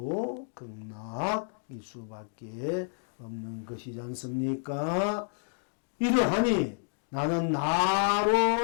극락일 수밖에 없는 것이지 않습니까? 이러하니 나는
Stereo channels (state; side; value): silent; right; digital silence